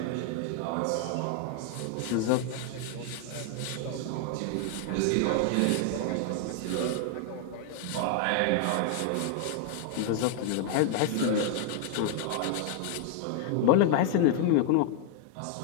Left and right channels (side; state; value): both; different; correlation 0.00